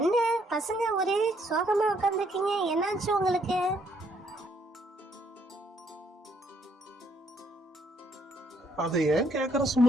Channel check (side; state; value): both; normal; correlation 0.70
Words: பசங்க ஒரே சோகமா உட்காந்துருக்கீங்க, என்னாச்சு உங்களுக்கு? அதை ஏன் கேக்குற